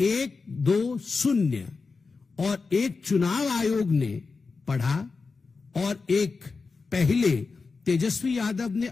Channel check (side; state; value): right; quieter; 4.4 dB